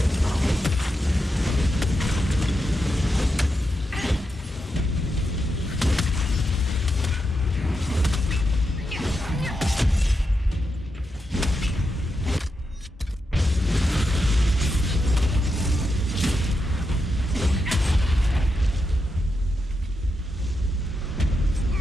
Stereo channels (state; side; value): normal; both; correlation 0.86